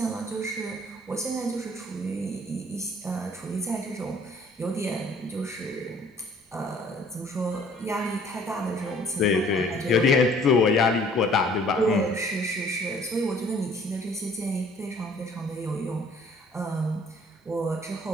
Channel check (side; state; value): both; normal; correlation 0.56